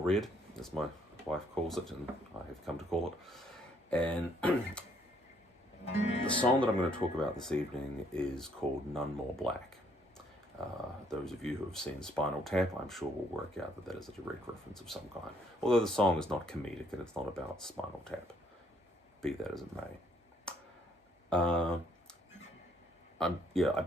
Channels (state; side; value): normal; both; correlation 0.67